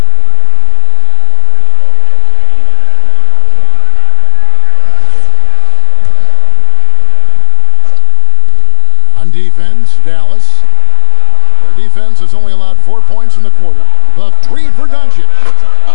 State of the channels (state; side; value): different; both; correlation 0.00